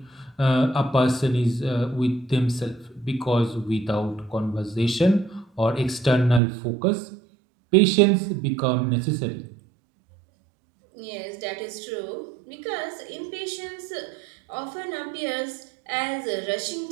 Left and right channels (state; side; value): drops out; left; at 6.4 s